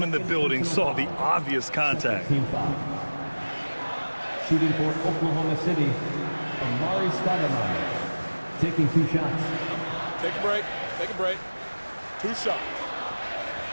in the building saw the obvious contact. Shooting for Oklahoma City, Amari Stoudemire. Taking 2 shots. Take a break. Take a break. 2 shots.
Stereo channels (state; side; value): inverted; both; correlation -1.00